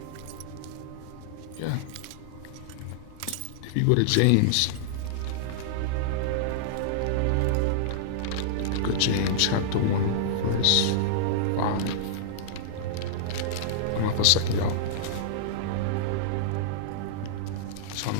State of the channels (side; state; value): both; different; correlation -0.02